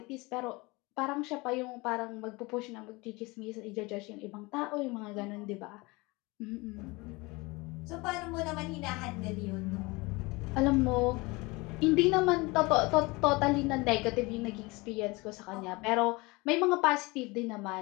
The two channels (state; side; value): quieter; right; 24.5 dB